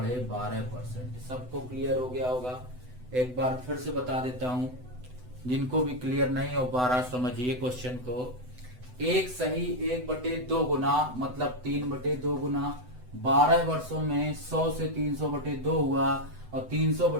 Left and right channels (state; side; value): late; left; 8.0 ms